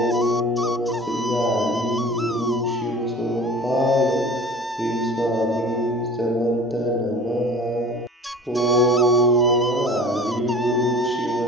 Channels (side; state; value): both; normal; correlation 0.41